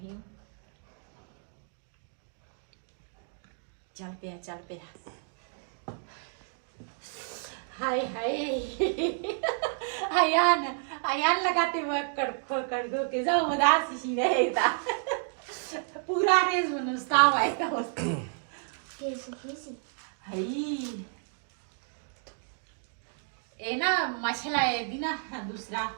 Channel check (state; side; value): silent; left; 57 dB below the other